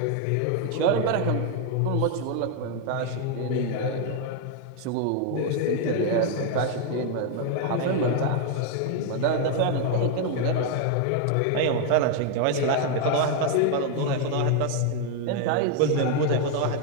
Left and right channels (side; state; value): both; different; correlation 0.01